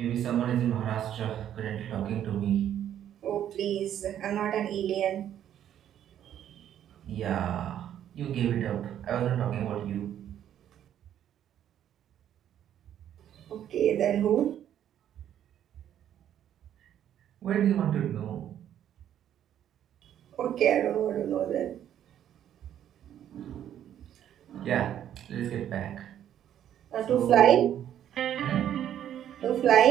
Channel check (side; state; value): left; quieter; 10.5 dB